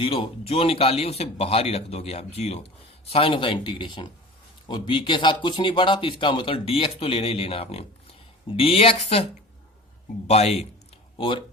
जो निकाली उसे बाहर ही रख दोगे आप 0, साइन ऑफ द इंटीग्रेशन, और b के साथ कुछ नहीं पड़ा तो इसका मतलब dx तो लेना ही लेना आपने, dx बाय, और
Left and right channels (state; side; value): normal; both; correlation 0.37